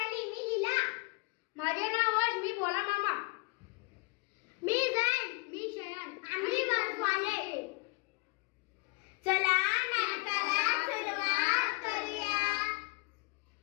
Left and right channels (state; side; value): quieter; right; 26.4 dB